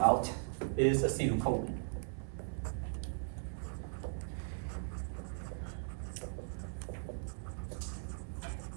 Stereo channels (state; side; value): silent; left; 52 dB below the other